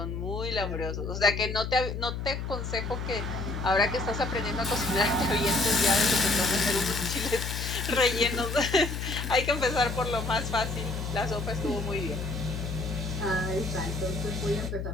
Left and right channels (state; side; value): noise; left; hum, 4 dB below the sound